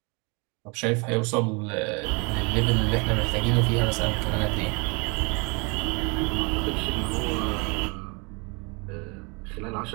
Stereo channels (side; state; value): left; quieter; 30.7 dB